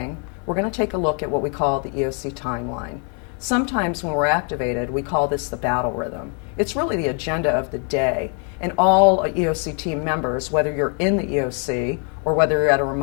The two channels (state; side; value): quieter; right; 39.0 dB